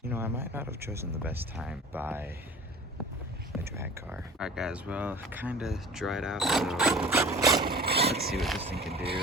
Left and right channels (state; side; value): normal; both; correlation 0.41